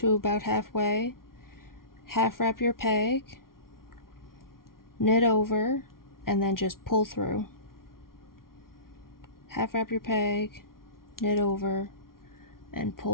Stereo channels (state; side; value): late; right; 0.93 ms